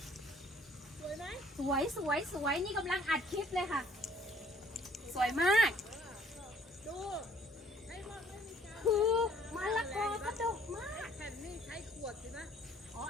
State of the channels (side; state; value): both; normal; correlation 0.60